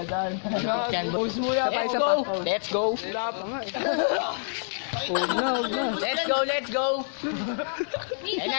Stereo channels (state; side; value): silent; right; digital silence